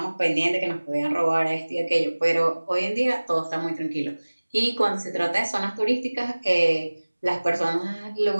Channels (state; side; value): inverted; both; correlation -1.00